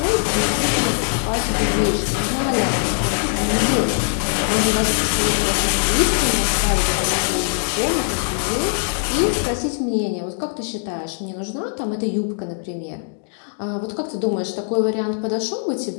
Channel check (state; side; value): silent; right; digital silence